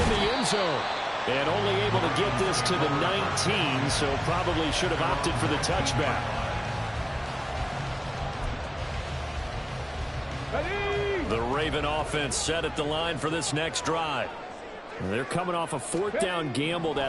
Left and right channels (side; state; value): both; identical; correlation 1.00